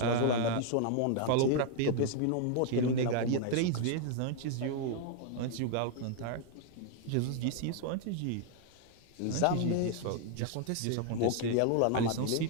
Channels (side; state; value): both; different; correlation 0.00